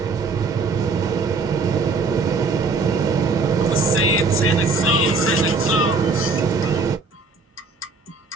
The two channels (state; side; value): quieter; left; 4.0 dB